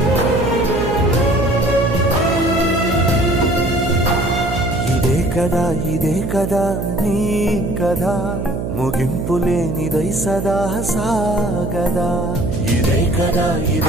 ఇదే కదా నీ కథ, ముగింపులేనిదై సదా సాగదా. ఇదే కదా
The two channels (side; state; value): right; noise; hum, 4 dB below the sound